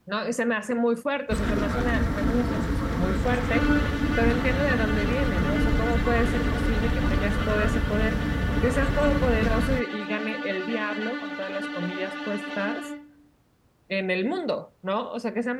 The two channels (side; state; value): both; identical; correlation 1.00